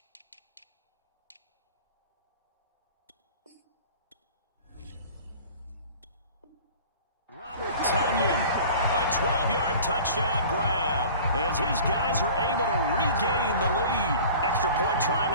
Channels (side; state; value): both; inverted; correlation -0.43